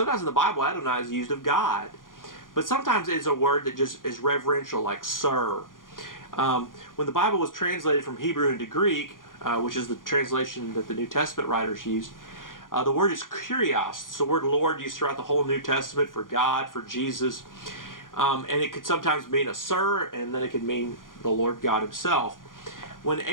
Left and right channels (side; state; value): right; late; 0.90 ms